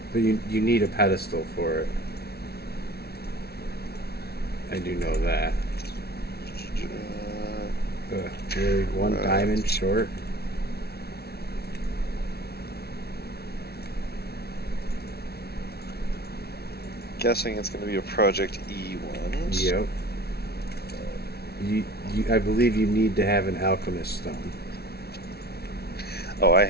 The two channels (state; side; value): late; right; 0.46 ms